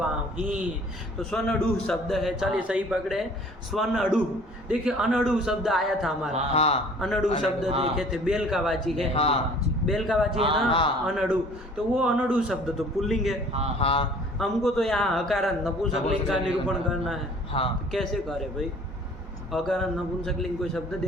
तो स्वनडु शब्द है। चलिए सही पकड़े। स्वनडु। देखिए अनडु शब्द आया था हमारा। हाँ। अनडु शब्द देखे थे, बेल का वाची है। हाँ। बेल का वाची है ना? हाँ। अनडु। तो वो अनडु शब्द तो पुल्लिंग है। हाँ। हमको तो यहाँ अकारांत नपुंसकलिंग का निरूपण करना है। हाँ। तो कैसे करे भाई? अकारांत नपुंसकलिंग कोई शब्द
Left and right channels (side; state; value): both; normal; correlation 0.51